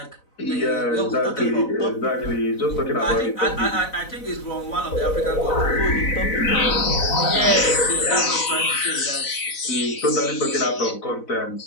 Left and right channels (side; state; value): right; late; 4.0 ms